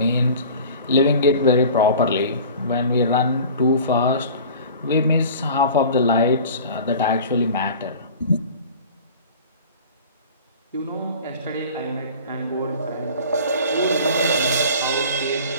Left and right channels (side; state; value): both; inverted; correlation -0.42